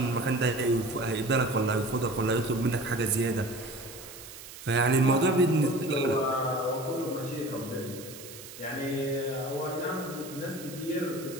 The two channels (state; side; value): noise; right; hiss, 15 dB below the sound